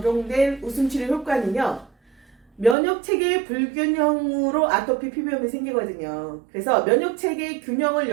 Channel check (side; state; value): left; drops out; at 2.8 s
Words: 웃음치료 효과는요. 면역체계의 불균형으로 아토피 피부염이 생기거든요. 그래서 면역체계의 균형을